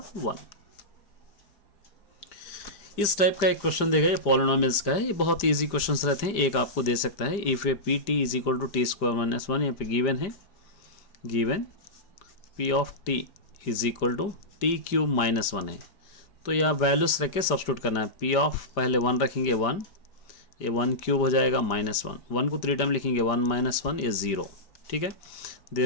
1। इस type का एक क्वेश्चन देगा, ये पॉलिनोमियल्स का है, ये बहुत इजी क्वेश्चंस रहते हैं। एक आपको दे सकता है, if A P T is equal to t² - 1, यहाँ पे गिवन है, given p of t is equal to t³ - 1 है, तो यहाँ वैल्यूज रख के सब्स्टिट्यूट करना है। p ऑफ पहले 1 रखेंगे 1, ये 1³ हो जाएगा -1, 1 को 3 टाइम लिखेंगे 1 - 1 ये 0। ठीक है,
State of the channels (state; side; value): late; right; 5.0 ms